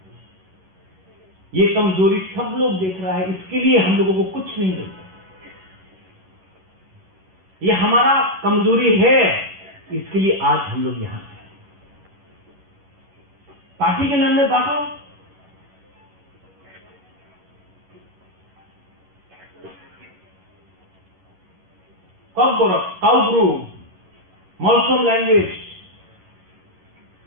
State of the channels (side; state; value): left; late; 11 ms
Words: कमजोरी सब लोग देख रहा है। इसके लिए हम लोगों को कुछ नहीं मिलता। ये हमारा कमजोरी है, इसके लिए आज हम लोग यहां हैं। पार्टी के नाम में बांटो, काउब्रू, मॉल्सोम लैंग्वेज,